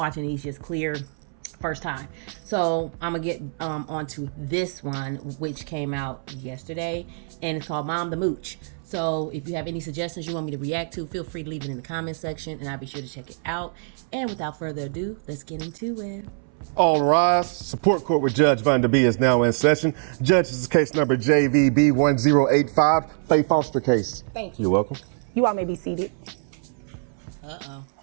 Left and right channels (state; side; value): silent; left; 62 dB below the other